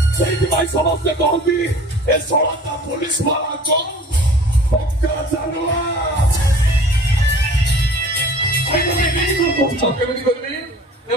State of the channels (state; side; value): normal; both; correlation 0.46